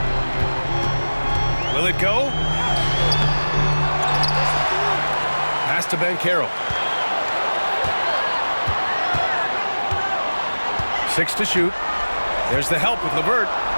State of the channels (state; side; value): inverted; both; correlation -1.00